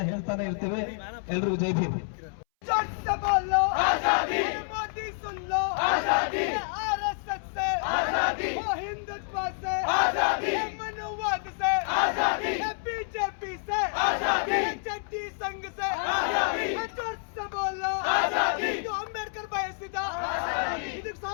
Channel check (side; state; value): right; silent; 59 dB below the other